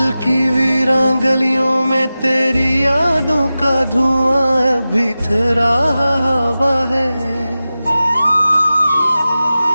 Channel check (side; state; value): both; inverted; correlation -0.95